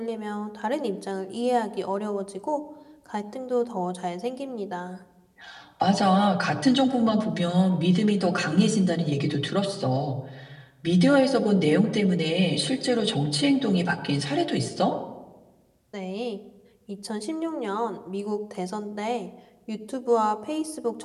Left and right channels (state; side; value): identical; both; correlation 1.00